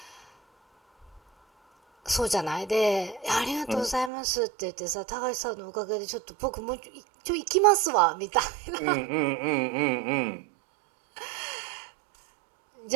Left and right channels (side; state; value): left; drops out; at 4.1 s